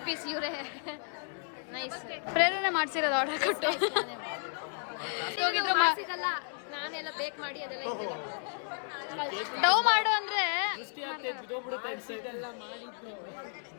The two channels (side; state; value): right; silent; 55 dB below the other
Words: ಪೀಸ್ ಇವರೇ. ನೈಸ್. ಪ್ರೇರಣೆ ಮಾಡ್ಸಿರೋದು ಆರ್ಡರ್ ಕೊಟ್ಟು ಹೋಗಿದ್ರು. ನಾನೆಲ್ಲ ಬೇಕ್ ಮಾಡಿ ಅದೆಲ್ಲ ಡವ್ ಮಾಡು ಅಂದ್ರೆ